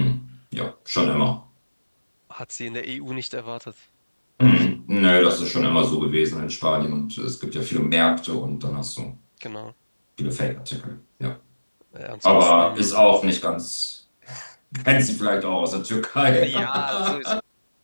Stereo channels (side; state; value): both; inverted; correlation -1.00